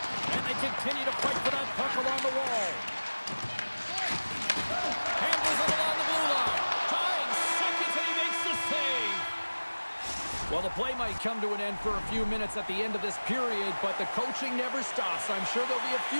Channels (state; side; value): inverted; both; correlation -1.00